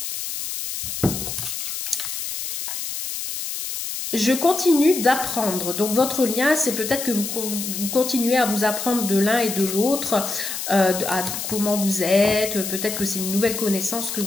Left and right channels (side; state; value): left; noise; hiss, 5 dB below the sound